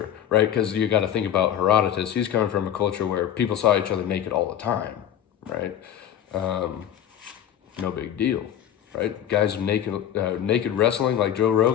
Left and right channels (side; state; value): right; quieter; 10.3 dB